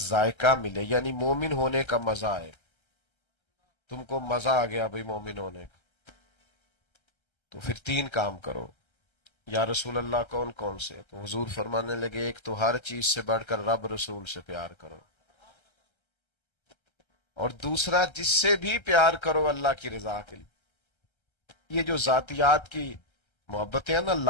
ملے، یعنی مومن ہونے کا مزہ آئے، تم کو مزہ آ گیا بھئی مومن ہونے کا، تو پھر تین کام کرو۔ یا رسول اللہ کون کون سے؟ تو حضور فرمانے لگے ایک تو ہر چیز سے بڑھ کر رب رسول سے پیار کرو، اور دوسرا جس سے بھی پیار کرو اللہ کی رضا کے لیے۔ یہ جو ذاتیات کی محبتیں ہیں نا،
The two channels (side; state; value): right; late; 1.3 ms